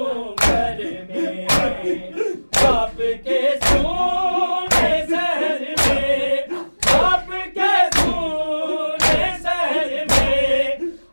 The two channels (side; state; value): both; inverted; correlation -1.00